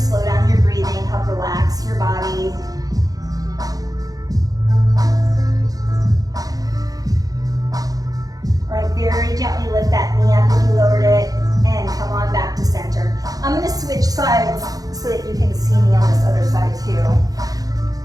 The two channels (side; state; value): left; late; 0.18 ms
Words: down your breathing, help relax your body. All right, very gently lift that knee up if you lowered it, and come on back to center. I'm gonna switch sides so that you can see me on this other side too.